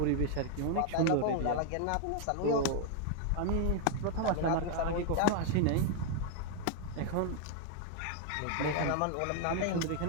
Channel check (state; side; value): different; both; correlation 0.00